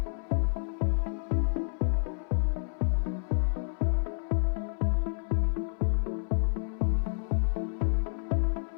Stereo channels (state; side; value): silent; right; 58 dB below the other